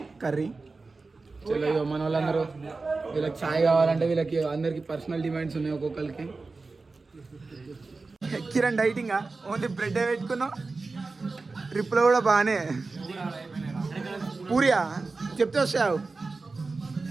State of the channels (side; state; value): left; quieter; 3.8 dB